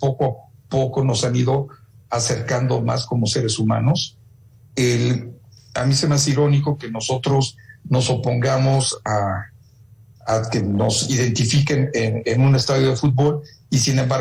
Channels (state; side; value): identical; both; correlation 1.00